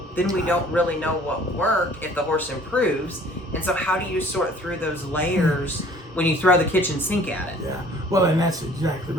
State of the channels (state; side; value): normal; both; correlation 0.53